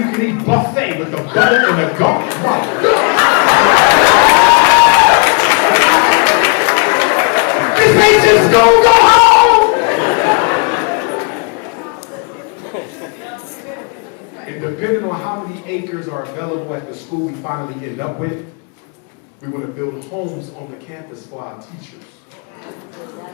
can eat buffet with the butter and the garlic. My God. This ain't just school, go home! And depending on how many acres are available at the school we finally end up with, We want to build homes on the campus for our teachers.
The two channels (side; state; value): right; quieter; 36.9 dB